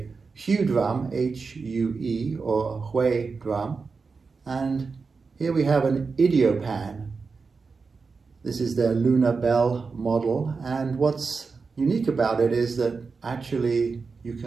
Hue drum, H-U-E, or Hui drum, and here we have an Idiopan. This is their lunar bell model, and what's unique about it is that actually you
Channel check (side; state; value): left; quieter; 4.7 dB